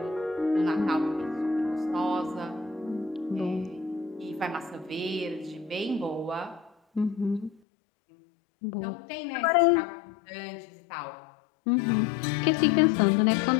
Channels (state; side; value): drops out; right; at 7.6 s